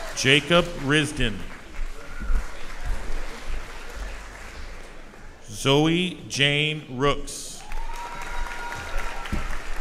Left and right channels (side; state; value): both; identical; correlation 1.00